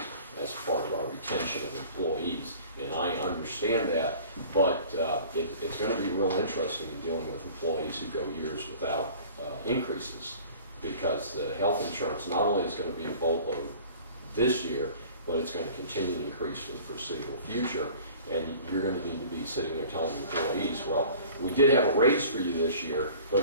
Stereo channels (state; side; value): inverted; both; correlation -0.47